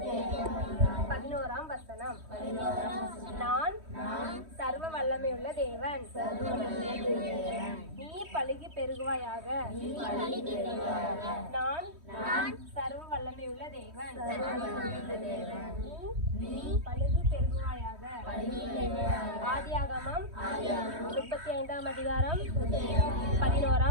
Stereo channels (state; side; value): late; left; 3.1 ms